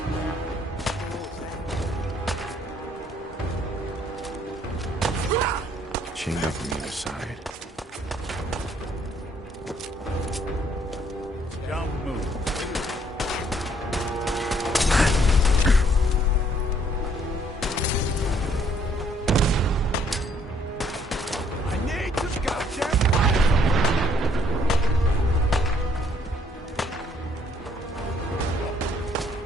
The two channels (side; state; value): both; normal; correlation 0.65